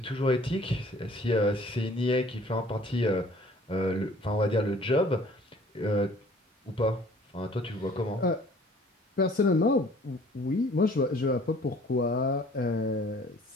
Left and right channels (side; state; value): both; normal; correlation 0.53